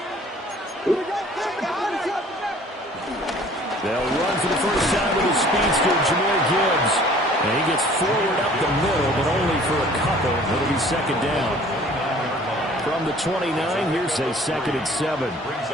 They'll run for the first time with the speedster, Jahmyr Gibbs. And he gets forward up the middle, but only for a couple. It'll be second down. From the 29, here's a 2nd and 7.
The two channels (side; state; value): both; normal; correlation 0.52